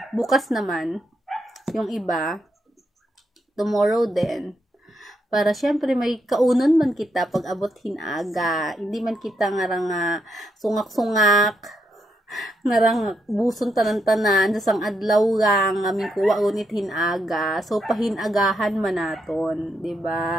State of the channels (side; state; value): both; normal; correlation 0.79